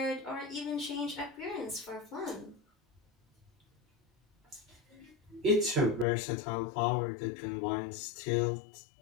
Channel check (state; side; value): drops out; right; at 6.1 s